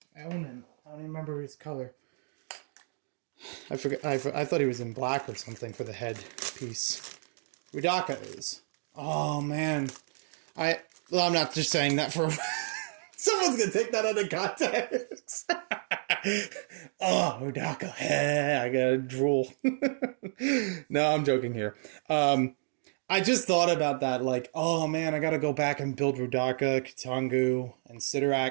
Onan. I don't even remember his color. I forgot. I thought he was in black or something for the head piece. Rudaka is. Oh man. I'm not just saying that for. Someone's gonna take that out of context. Oh, Rudaka. I gotta drool. No, I'm joking here. I just thought about that, like, oh man, I gotta go back and build Rudaka, Kitangu, and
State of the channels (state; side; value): silent; left; digital silence